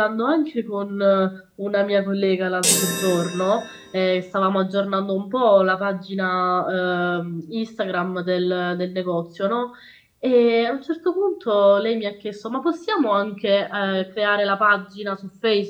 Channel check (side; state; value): both; identical; correlation 1.00